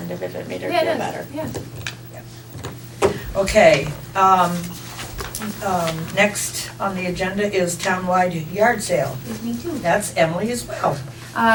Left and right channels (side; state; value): both; identical; correlation 1.00